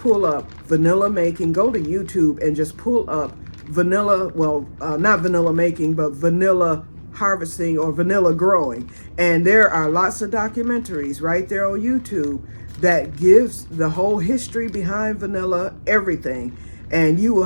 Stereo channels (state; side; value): inverted; both; correlation -1.00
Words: up vanilla making. Go to YouTube and just pull up vanilla, not vanilla making, but vanilla harvesting or vanilla growing. And there are lots of documentaries right there on YouTube that gives the whole history behind vanilla, everything. And you